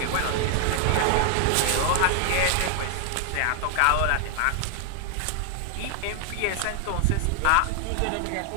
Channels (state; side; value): different; both; correlation 0.00